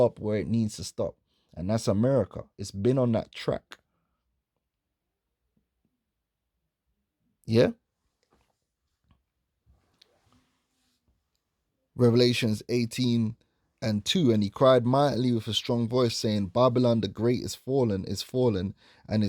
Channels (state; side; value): identical; both; correlation 1.00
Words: where it needs to stop. And that's America. It's been on that track. Yeah? Revelations 18:2, and he cried mightily with a strong voice, saying, Babylon the great is fallen, and